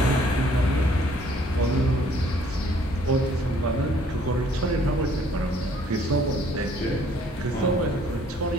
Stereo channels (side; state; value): both; normal; correlation 0.61